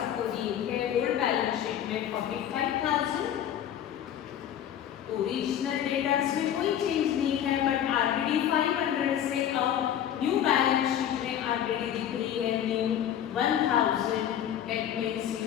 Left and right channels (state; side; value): quieter; right; 10.2 dB